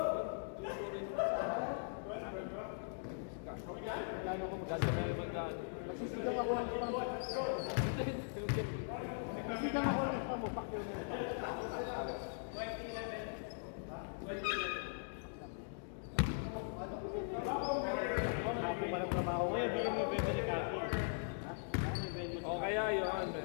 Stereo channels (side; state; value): right; silent; digital silence